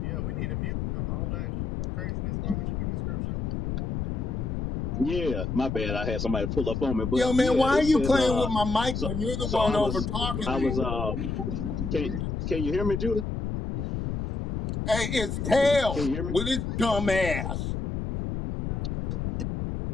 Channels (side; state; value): left; noise; rumble, 2 dB below the sound